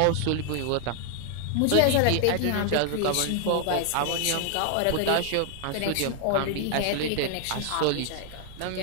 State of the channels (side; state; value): both; different; correlation 0.00